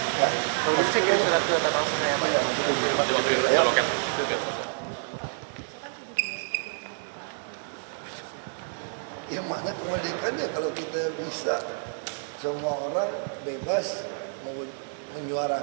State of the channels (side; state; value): left; silent; digital silence